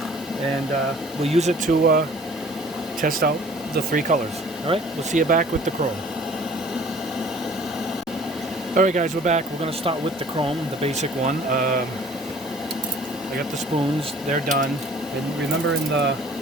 and we'll use it to test out the 3 colors. Alright, we'll see you back with the chrome. Alright guys, we're back. We're going to start with the chrome, the basic one. I got the spoons, they're done. And remember in a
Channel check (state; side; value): normal; both; correlation 0.51